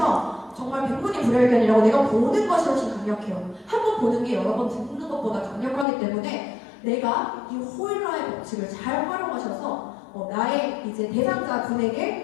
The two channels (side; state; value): right; drops out; at 5.9 s